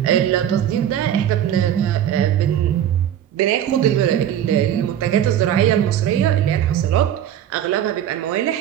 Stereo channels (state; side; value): quieter; left; 10.5 dB